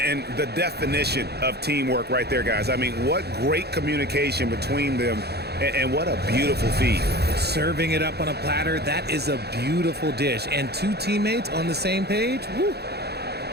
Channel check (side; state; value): left; late; 0.47 ms